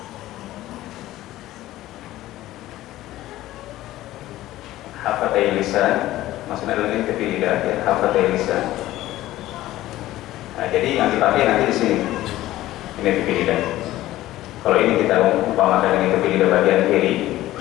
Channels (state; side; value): quieter; right; 15.4 dB